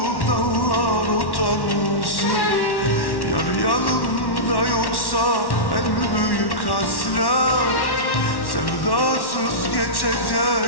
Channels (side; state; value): right; late; 1.1 ms